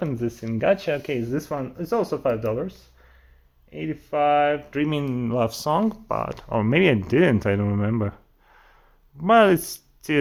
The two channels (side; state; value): both; identical; correlation 1.00